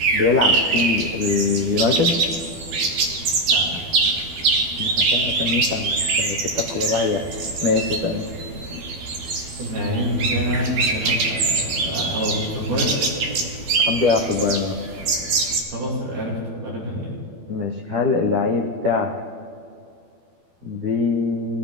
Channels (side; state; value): left; late; 12 ms